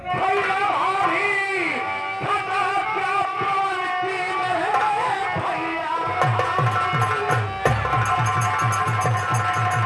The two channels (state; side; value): identical; both; correlation 1.00